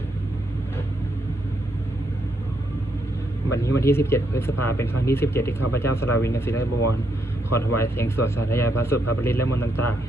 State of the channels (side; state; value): both; normal; correlation 0.77